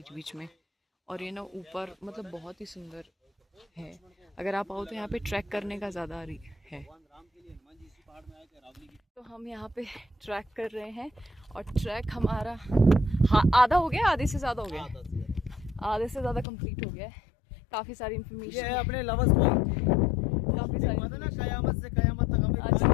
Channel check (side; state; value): right; drops out; at 16.4 s